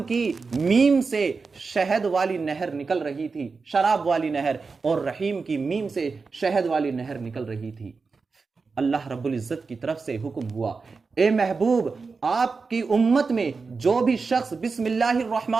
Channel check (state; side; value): quieter; left; 4.6 dB